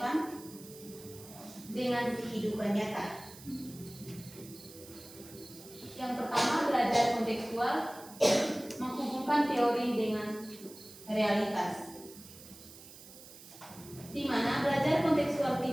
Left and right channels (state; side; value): noise; right; hiss, 18 dB below the sound